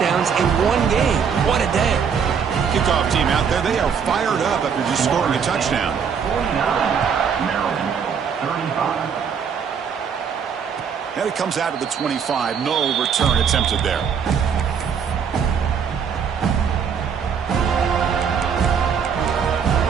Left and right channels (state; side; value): quieter; left; 6.9 dB